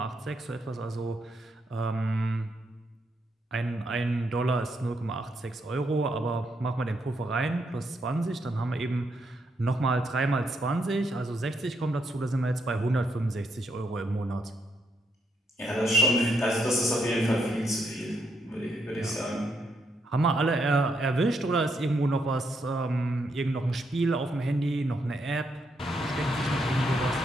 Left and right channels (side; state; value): both; normal; correlation 0.78